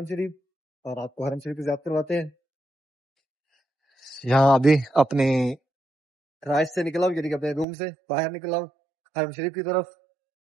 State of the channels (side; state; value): left; drops out; at 7.7 s